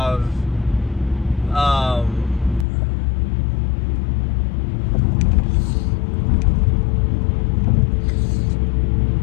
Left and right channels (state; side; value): drops out; right; at 2.7 s